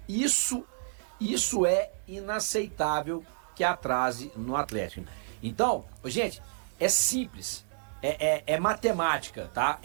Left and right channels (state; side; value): silent; left; digital silence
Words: Isso é inaceitável que atrase no Atlético. Então, gente, é simples. É matemática, tá?